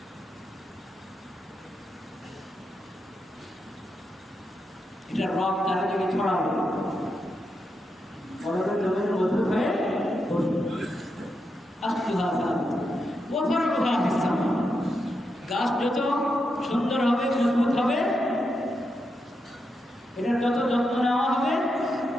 এটা রব চারিদিকে ছড়াবে, কলবের জমিনে মজবুত হয়ে বসবে। আসলুহা সাবিতুন ওয়া ফারউহা ফিস-সামা। গাছ যত সুন্দর হবে, মজবুত হবে,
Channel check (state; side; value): normal; both; correlation 0.85